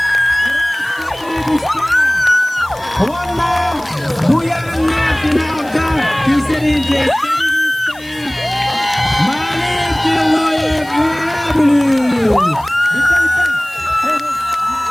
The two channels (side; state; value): left; noise; hiss, 23 dB below the sound